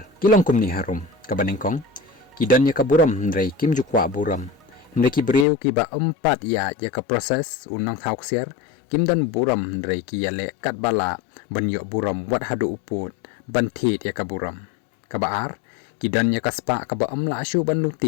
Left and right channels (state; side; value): drops out; right; at 5.5 s